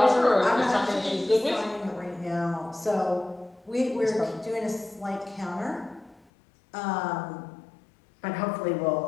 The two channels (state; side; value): drops out; right; at 6.2 s